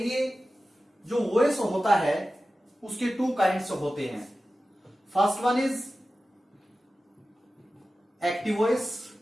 जो वॉइस होता है उसके टू काइंड्स होते हैं। First one is active voice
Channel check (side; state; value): both; normal; correlation 0.94